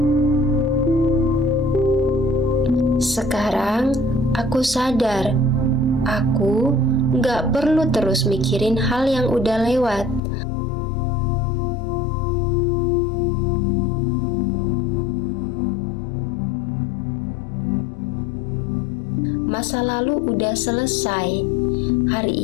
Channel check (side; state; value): right; drops out; at 10.2 s